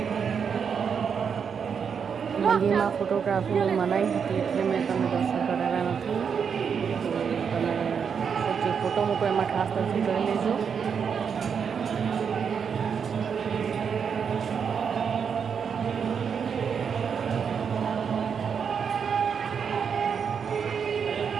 મંદિરમાં ફોટોગ્રાફીની મનાઈ હતી એટલે મેં તમને દર્શન કરાવ્યા નથી. તમે જે ફોટો મૂકો એમાં ખાસ દર્શન કરી લેજો.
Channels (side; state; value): left; quieter; 6.8 dB